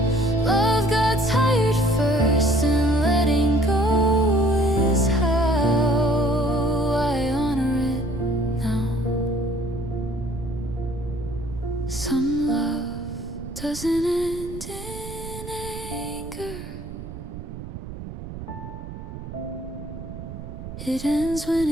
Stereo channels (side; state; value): right; noise; rumble, 10 dB below the sound